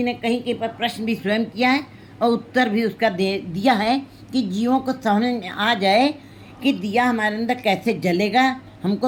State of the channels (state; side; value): identical; both; correlation 1.00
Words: ने कहीं कहीं पर प्रश्न भी स्वयं किया है और उत्तर भी उसका दिया है कि जीवों को समझ में आ जाए कि दिया हमारे अंदर कैसे जलेगा,